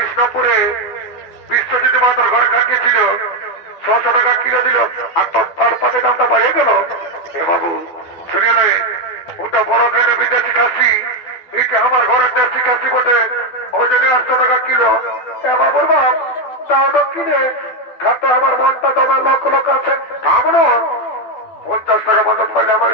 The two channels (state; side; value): late; right; 12 ms